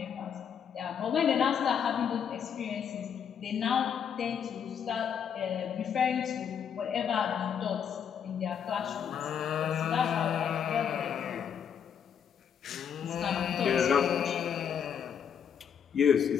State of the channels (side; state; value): right; quieter; 7.9 dB